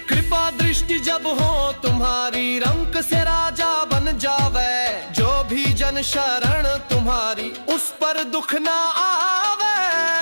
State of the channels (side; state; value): both; inverted; correlation -1.00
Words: कृपा दृष्टि जब हो तुम्हारी, रंक से राजा बन जावे। जो भी जन शरण तुम्हारी, उस पर दुख न आवे।